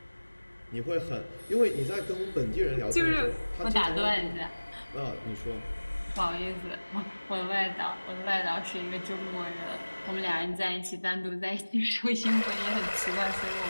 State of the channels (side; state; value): both; inverted; correlation -1.00